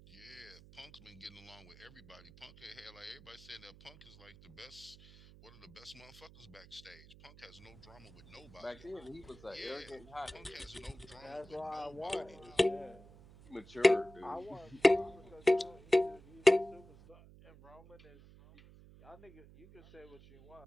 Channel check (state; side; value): noise; right; hum, 21 dB below the sound